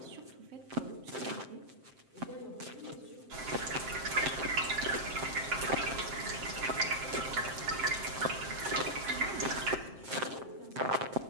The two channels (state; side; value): late; left; 7.6 ms